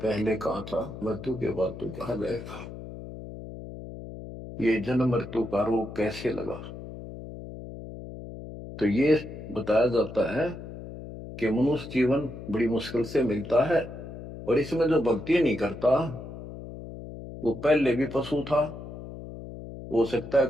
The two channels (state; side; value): noise; left; hum, 12 dB below the sound